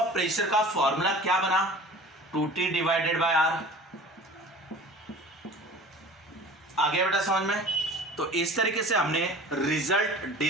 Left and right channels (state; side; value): normal; both; correlation 0.42